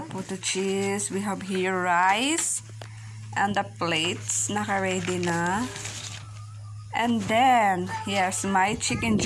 potato cheese. We have here rice and the plates naka-ready na. And then, yes, my chicken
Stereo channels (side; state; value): both; identical; correlation 1.00